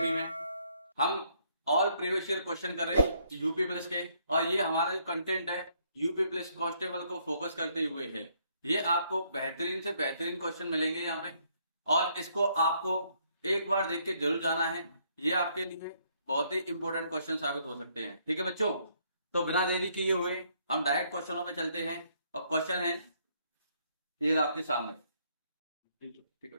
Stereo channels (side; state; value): both; inverted; correlation -0.69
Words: में। हम ऑल प्रीवियस ईयर क्वेश्चन कर रहे हैं यूपी पुलिस के, और ये हमारा जो कंटेंट है यूपी पुलिस कांस्टेबल को फोकस करते हुए है। ये आपको बेहतरीन से बेहतरीन क्वेश्चन मिलेंगे यहाँ पे, और इसको आपको एक बार देख के जरूर जाना है। ये आपके लिए बहुत ही इंपॉर्टेंट क्वेश्चन साबित हो सकते हैं। ठीक है बच्चों, तो बिना देरी किए हुए हम डायरेक्ट क्वेश्चनों पे चलते हैं। और क्वेश्चन है ये आपके सामने। ठीक है